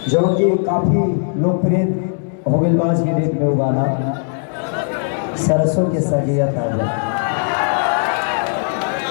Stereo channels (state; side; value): silent; right; 67 dB below the other